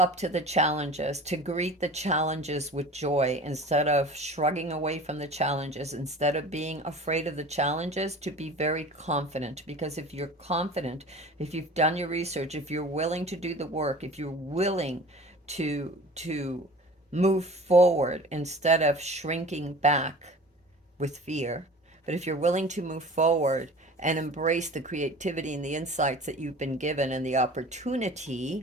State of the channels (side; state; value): both; normal; correlation 0.40